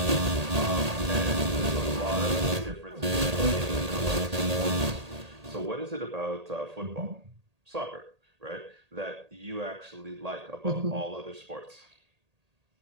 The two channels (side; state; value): left; late; 1.8 ms